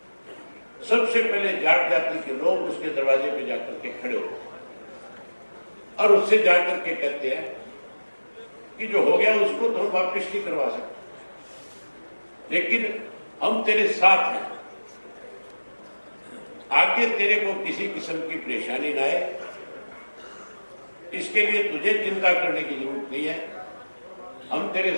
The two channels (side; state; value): both; inverted; correlation -1.00